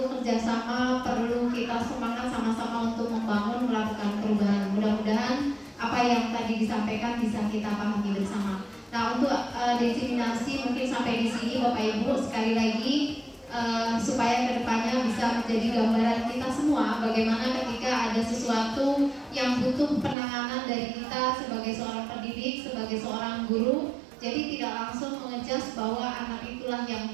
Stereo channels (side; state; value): left; drops out; at 20.2 s